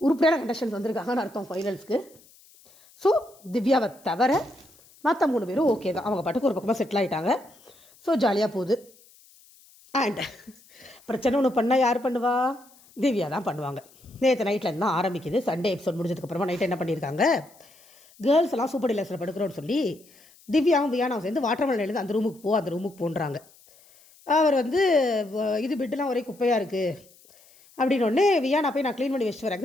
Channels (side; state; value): left; noise; hiss, 27 dB below the sound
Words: கண்டெஸ்டன்ஸ் வந்திருக்காங்கன்னு அர்த்தம் ஃபைனல்ஸ்க்கு. ஸோ திவ்யாவை தவிர மற்ற 3 பேரும் ஓகே தான், அவங்க பாட்டுக்கு ஒரு பக்கமாக செட்டில் ஆகிட்டாங்க. ஸோ ஜாலியாக போகுது. அண்ட் பிரச்சனை ஒன்று பண்ணால் யார் பண்ணுவா? திவ்யா தான் பண்ணுவாங்க. நேற்று நைட்லேருந்து தான் ஆரம்பிக்குது. சண்டே எபிசோட் முடிஞ்சதுக்கப்புறமா நைட்டு என்ன பண்ணியிருக்காங்க, கேர்ள்ஸ் எல்லாம் சூப்பர் டீலக்ஸில் படுக்கிறோன்னு சொல்லி திவ்யாவும் வியானாவும் சேர்ந்து வாட்டர்மெலன் எழுந்து அந்த ரூமுக்கு போன்றாங்க. அவர் வந்து இது பெட்டெலாம் ஒரே குப்பையாக இருக்குது அப்படின்னு ஒன்று வியானா போய் நான் க்ளீன் பண்ணி வச்சுட்டு